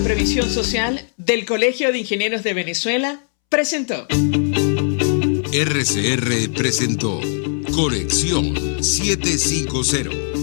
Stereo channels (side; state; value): right; silent; 66 dB below the other